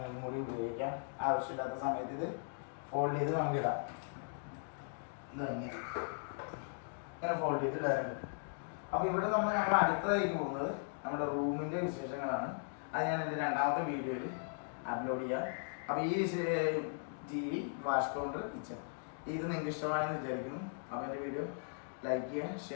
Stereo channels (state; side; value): silent; right; digital silence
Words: കൂടി ഉപയോഗിക്കാം. ആവശ്യമില്ലാത്ത സമയത്ത് ഇത് ഫോൾഡ് ചെയ്ത് നമുക്കിടാം. ഇത് ഇങ്ങനെ ഫോൾഡ് ചെയ്ത് ഇടാറുണ്ട്. അപ്പോൾ ഇവിടെ നമ്മൾ അടുത്തതായിട്ട് പോകുന്നത് നമ്മുടെ റൂമിൻ്റെ വിശേഷങ്ങളാണ്. അത് ഞാൻ എൻ്റെ 2ാമത്തെ വീഡിയോയിൽ അപ്ലോഡ് ചെയ്യാം. അപ്പോൾ ഈ TV, വാഷ് കൗണ്ടർ, കിച്ചൺ ഇത് നിങ്ങൾക്ക് ഇഷ്ടമായെന്ന് വിചാരിക്കുന്നു. അപ്പോൾ എൻ്റെ വീഡിയോ ലൈക്ക് ചെയ്യുക,